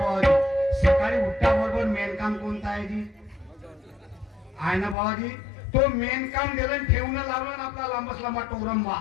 सकाळी उठता बरोबर मेन काम कोणतं आहे जी? आहे ना बाबाजी, तो मेन काम दिलं ठेवून लावलं ना आपला लांबच लांबा टोरंबा.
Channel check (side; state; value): right; drops out; at 5.0 s